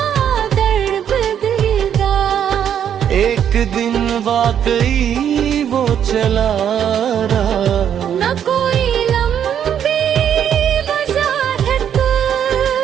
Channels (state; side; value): quieter; left; 9.1 dB